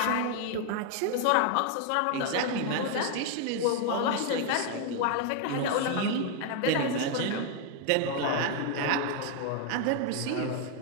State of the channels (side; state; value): both; different; correlation 0.01